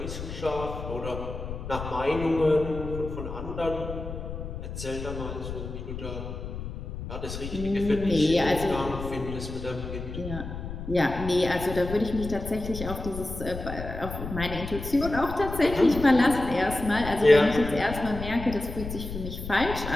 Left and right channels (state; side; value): noise; left; rumble, 8 dB below the sound